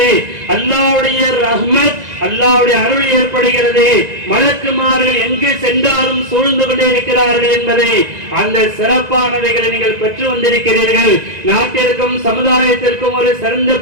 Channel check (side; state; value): left; late; 1.9 ms